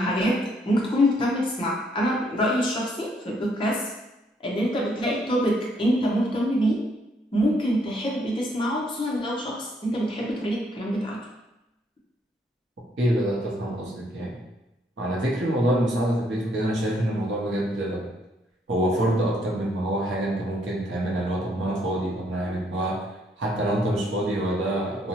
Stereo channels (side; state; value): both; normal; correlation 0.70